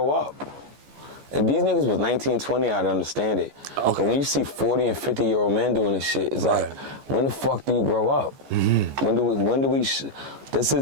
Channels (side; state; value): left; late; 14 ms